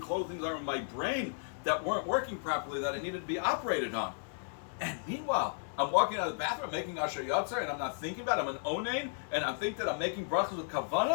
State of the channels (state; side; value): silent; right; digital silence